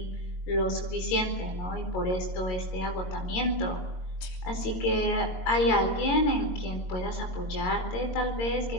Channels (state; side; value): late; right; 22 ms